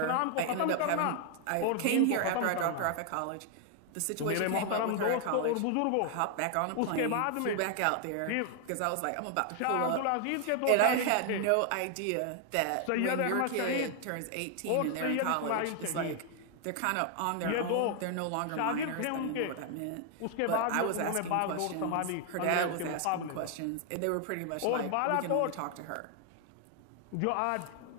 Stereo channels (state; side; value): different; both; correlation 0.00